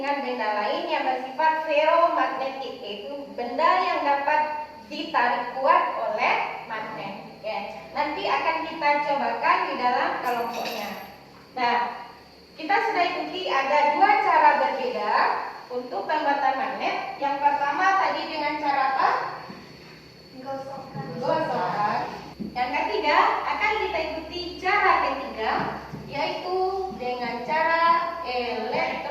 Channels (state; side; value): identical; both; correlation 1.00